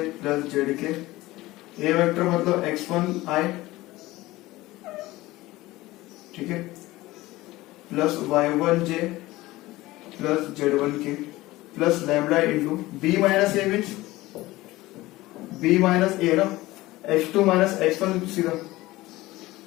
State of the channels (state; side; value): quieter; right; 18.5 dB